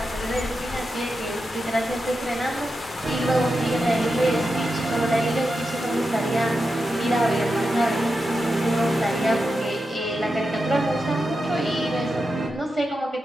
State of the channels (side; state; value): both; normal; correlation 0.89